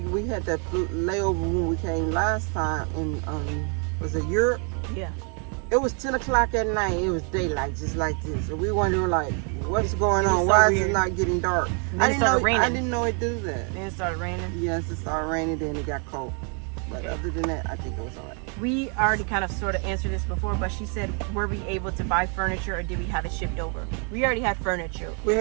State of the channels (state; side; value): quieter; left; 39.2 dB